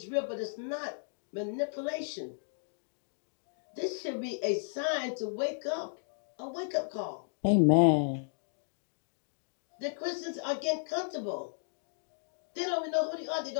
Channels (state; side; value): silent; right; digital silence